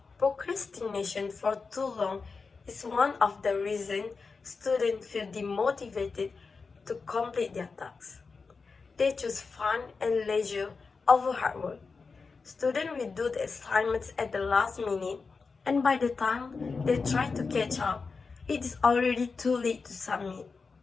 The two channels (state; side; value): quieter; right; 4.6 dB